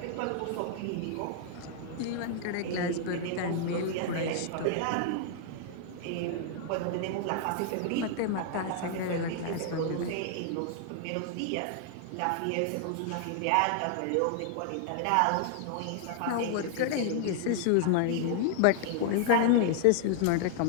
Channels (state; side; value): different; both; correlation -0.01